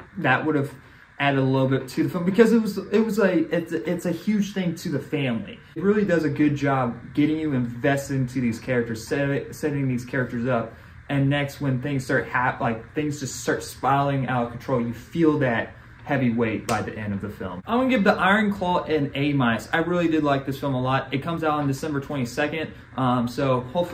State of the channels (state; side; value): identical; both; correlation 1.00